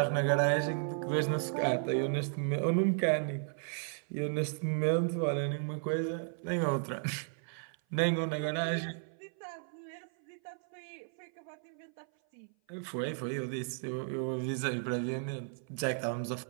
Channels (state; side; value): silent; left; 55 dB below the other